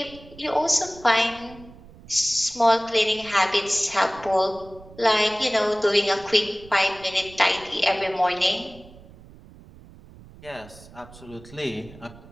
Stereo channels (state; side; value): noise; right; rumble, 21 dB below the sound